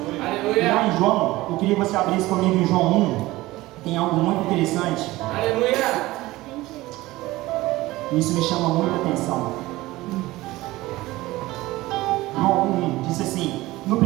Aleluia. Lá em João, eu queria que você abrisse comigo em João 1. Tem algo muito interessante. Aleluia. Isso me chama muita atenção. João 1 diz assim: no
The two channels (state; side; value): quieter; left; 18.5 dB